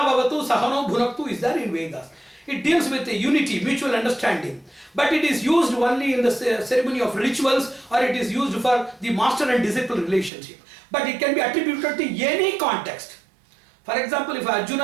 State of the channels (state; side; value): drops out; left; at 10.3 s